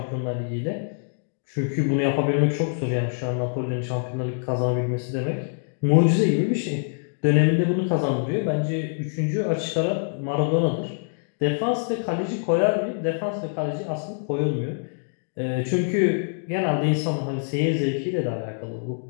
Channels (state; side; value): silent; right; digital silence